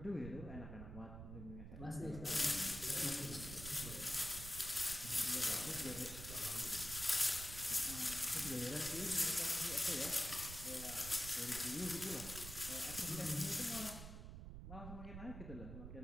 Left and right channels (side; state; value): right; noise; rumble, 9 dB below the sound